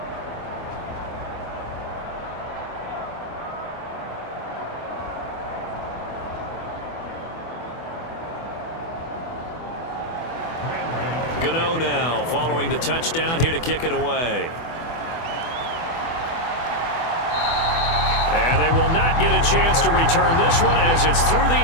Gano now following the touchdown here to kick it away. And they will not get a chance to return this one as it's through the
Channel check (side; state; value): right; late; 24 ms